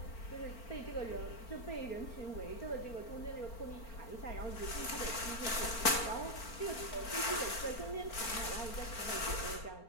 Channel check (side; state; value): right; late; 4.4 ms